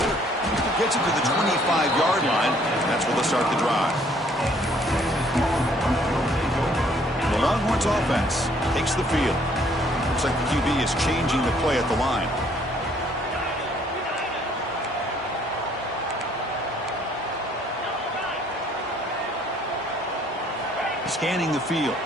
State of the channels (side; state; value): both; normal; correlation 0.62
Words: Gets it to the 25-yard line. That's where they'll start the drive. The Longhorns offense takes the field. Looks like the QB is changing the play at the line. Scanning the field.